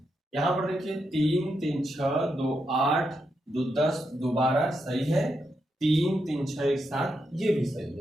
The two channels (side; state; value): both; normal; correlation 0.83